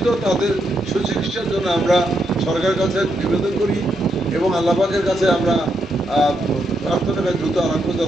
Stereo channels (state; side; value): normal; both; correlation 0.80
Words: তাদের সুচিকিৎসার জন্য আমরা সরকারের কাছে নিবেদন করি এবং আল্লাহ পাকের কাছে আমরা প্রার্থনা করি দ্রুত আরোগ্য